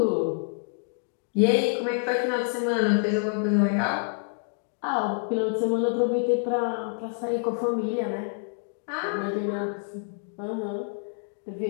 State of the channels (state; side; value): silent; right; digital silence